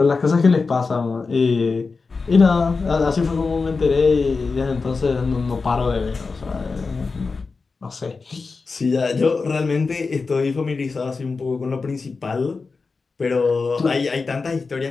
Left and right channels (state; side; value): quieter; right; 4.4 dB